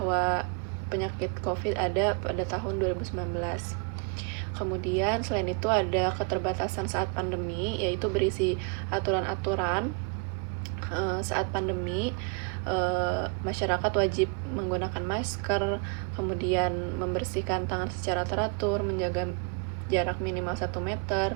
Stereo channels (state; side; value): quieter; left; 31.9 dB